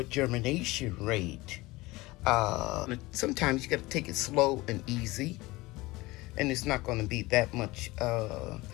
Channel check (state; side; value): quieter; right; 20.8 dB